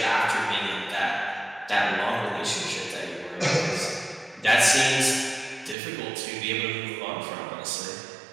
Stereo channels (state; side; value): drops out; left; at 5.8 s